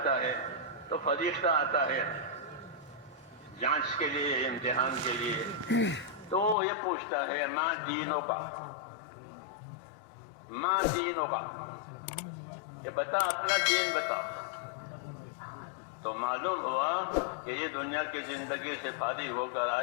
ہے تو فرشتہ آتا ہے جانچ کے لیے، امتحان کے لیے. تو یہ پوچھتا ہے ماں دینوں کا، ماں دینوں کا، یہ بتا اپنا دین بتا. تو معلوم ہوا کہ یہ دنیا کی زندگی سے فارغ ہو کر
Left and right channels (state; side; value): drops out; right; at 6.6 s